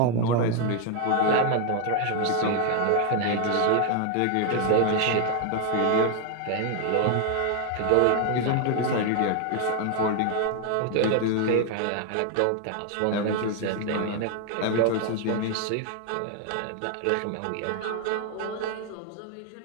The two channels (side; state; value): both; different; correlation 0.01